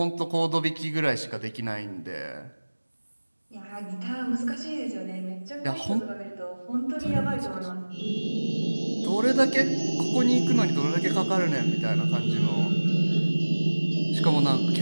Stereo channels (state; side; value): inverted; both; correlation -1.00